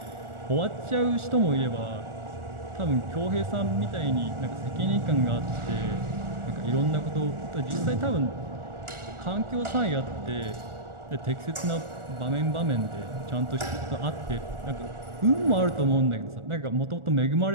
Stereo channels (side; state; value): left; late; 1.4 ms